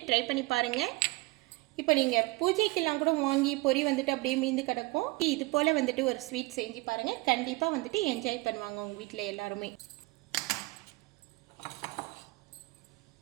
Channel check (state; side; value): quieter; left; 22.8 dB